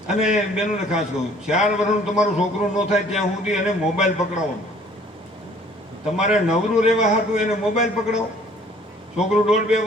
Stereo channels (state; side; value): normal; both; correlation 0.56